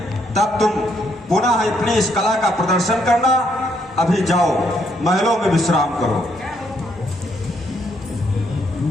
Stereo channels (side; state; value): both; normal; correlation 0.72